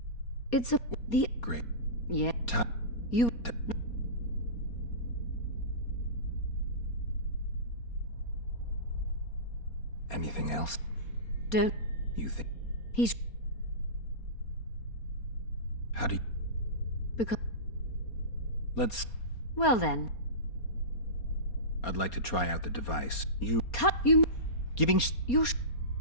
It's the... Great. Yeah. You... Anything else? Don't... You think... He's... How do you... Because... Let's... Well then. I'd like to try out the device. You... Cut you... Giving... You...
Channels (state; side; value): late; right; 4.3 ms